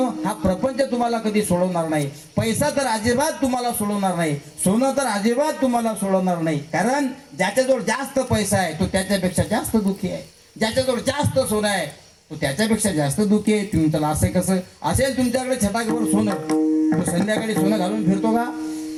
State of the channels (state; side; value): identical; both; correlation 1.00